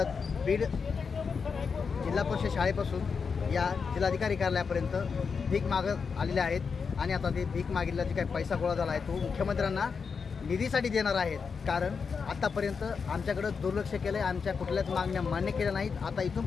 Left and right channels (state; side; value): quieter; right; 5.6 dB